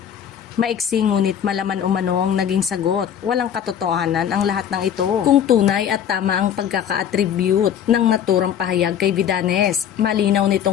Maiksi ngunit malaman umano ang naging sagot. Walang katotohanan ang lahat ng ito. Kung tunay at tama ang pagkaka-attribute ng naturang pahayag kay Vidanes, malinaw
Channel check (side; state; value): right; quieter; 9.0 dB